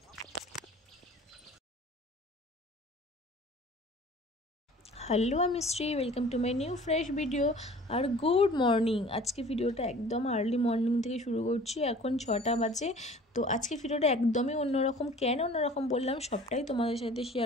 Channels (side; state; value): both; normal; correlation 0.47